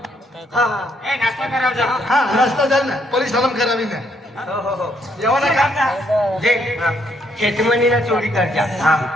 हा हा हा रस्ता झाला ना पोलीस हलम करावी ना हो हो हो जेवण का जे शेतमनीला चोरी करजा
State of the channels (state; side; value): normal; both; correlation 0.72